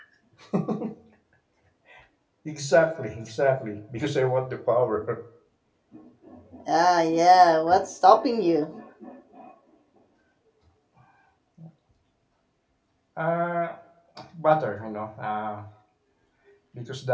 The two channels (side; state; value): both; identical; correlation 1.00